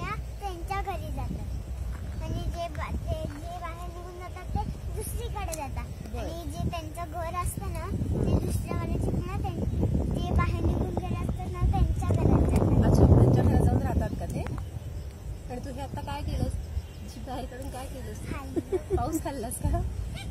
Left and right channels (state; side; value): identical; both; correlation 1.00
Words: त्यांच्या घरी जातात आणि जे बाहेर निघून जातात ते दुसरीकडे जातात. आणि जे त्यांचं घर असतं ना ते दुसऱ्यावाले चिमण्या जे बाहेर निघून गेले असतात ना त्यांच्या घरात जातात. अच्छा, त्यांच्या घरात जाऊन राहतात का ते? आणि तू हे आता काय केलंस? बाहेर काढून काय केलंस? पाऊस खाल्लास का?